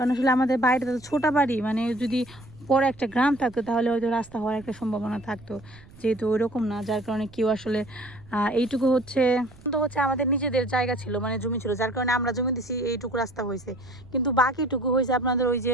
আসলে আমাদের বাড়িটা তো ছোটো বাড়ি, মানে যদি পরে একটা গ্রাম থাকতো তাহলে হয়তো রাস্তা হওয়ার একটা সম্ভাবনা থাকতো, যেহেতু ওইরকম না, যার কারণে কেউ আসলে এইটুকু হচ্ছে আমাদের নিজেদের জায়গা ছিল, মানে জমি ছিল, যার কারণে আমরা জমি দিছি, এইটুকু রাস্তা হয়েছে। কিন্তু বাকিটুকু হয়েছে আপনাদের ওই যে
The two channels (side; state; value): right; noise; rumble, 23 dB below the sound